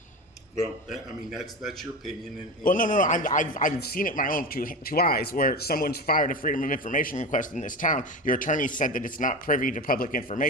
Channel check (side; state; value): both; normal; correlation 0.24